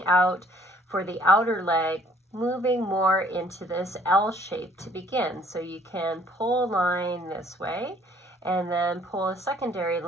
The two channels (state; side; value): normal; both; correlation 0.59